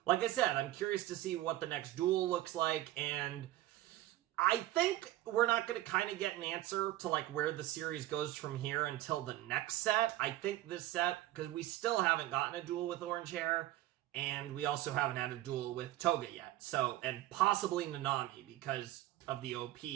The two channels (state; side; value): quieter; left; 15.5 dB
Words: like I said, I'm curious to see what the next duel looks like. And I think we're not going to kind of get an answer to, like, where the series goes from here until the next set. I think this set, because we still haven't gotten a duel with Orange Hair. And we also haven't had a duel with Toga yet. So, and possibly Nanami, because of the OP.